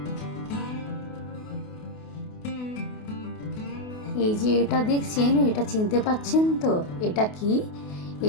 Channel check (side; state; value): right; late; 28 ms